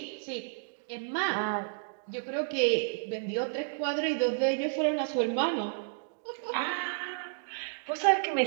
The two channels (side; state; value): left; silent; digital silence